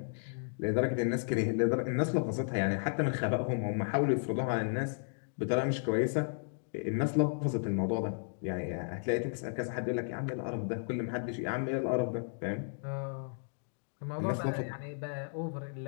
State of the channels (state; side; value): silent; right; digital silence